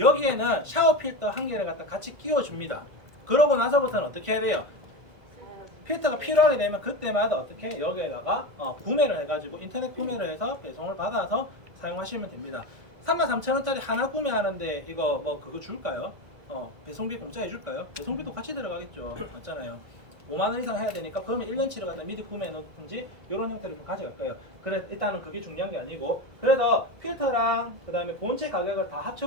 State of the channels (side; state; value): left; late; 1.5 ms